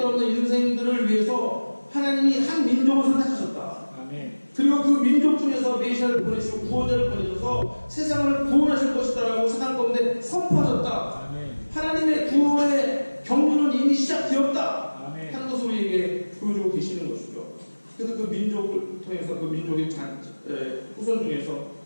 없는 인생들을 위해서 하나님이 한 민족을 선택하셨다. 아멘. 그리고 그 민족 중에서 메시아를 보내시고 구원자를 보내셔서 세상을 구원하실 것이다라고 세상 가운데 선포하셨다. 아멘. 하나님의 구원의 경륜은 이미 시작되었다. 아멘. 하는 것을 우리에게 보여주고 계시는 것이죠. 그래서 그 민족을 통해서 그 민족의 후손 중에서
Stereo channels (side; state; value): both; inverted; correlation -1.00